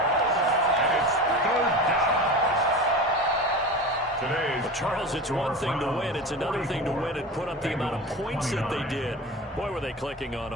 Well, Charles, it's one thing to win. It's another thing to win and put up the amount of points that they did. Boy, were they clicking on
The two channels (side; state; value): both; normal; correlation 0.30